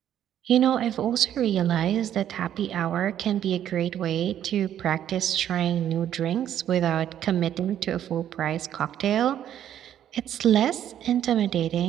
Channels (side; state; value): left; quieter; 10.6 dB